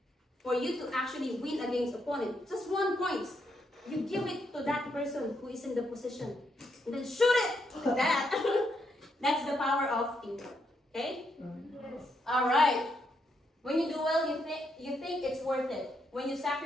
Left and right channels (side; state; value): both; normal; correlation 0.78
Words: for you to actually win against opponent, just 1 point, you give it to that person who is in the position, and then shoot it like that. That's the power of teamwork. Okay? Yes. All right. When you do well, you think it's worth it. When you